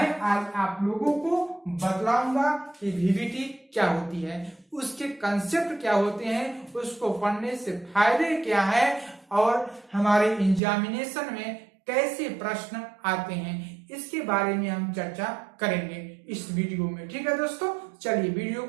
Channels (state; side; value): drops out; left; at 10.6 s